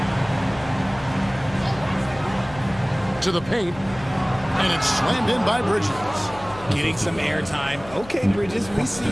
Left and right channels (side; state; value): left; noise; hum, 17 dB below the sound